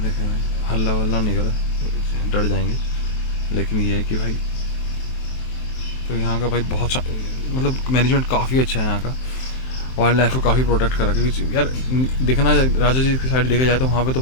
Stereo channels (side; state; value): right; late; 23 ms